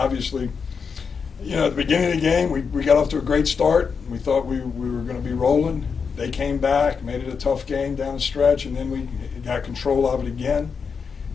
at the beginning of the game, we got off to a great start. We thought we were going to be rolling. They came back, made it a tough game down the stretch, and then we got control of it again.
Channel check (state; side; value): quieter; right; 5.8 dB